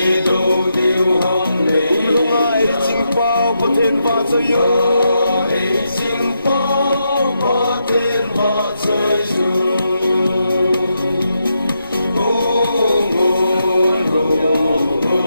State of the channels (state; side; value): inverted; both; correlation -0.83